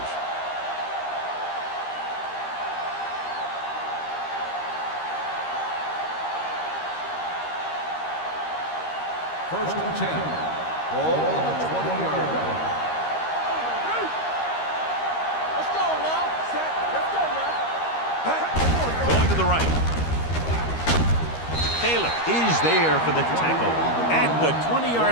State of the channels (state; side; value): late; right; 13 ms